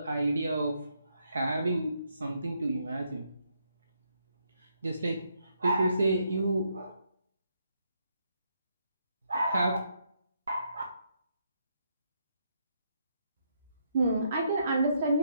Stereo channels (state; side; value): inverted; both; correlation -0.76